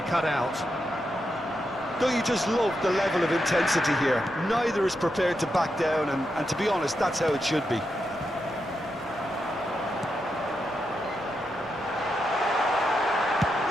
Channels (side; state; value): right; noise; rumble, 24 dB below the sound